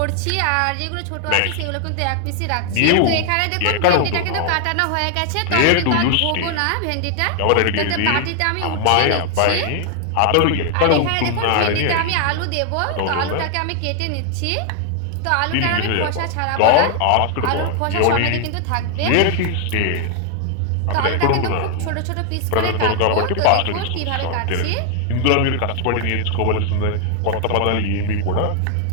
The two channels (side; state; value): both; different; correlation 0.00